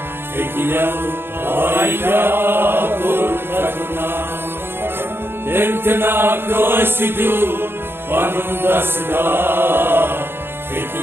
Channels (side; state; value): left; late; 0.11 ms